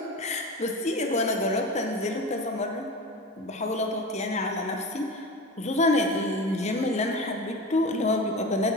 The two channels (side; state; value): both; normal; correlation 0.29